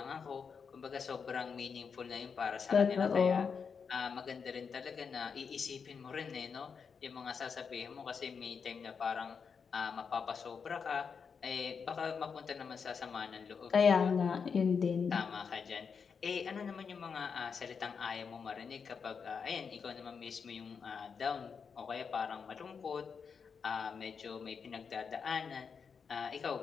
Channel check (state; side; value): quieter; right; 6.0 dB